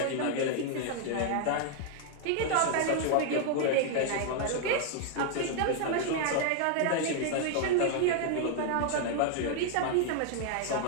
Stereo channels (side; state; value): both; different; correlation 0.00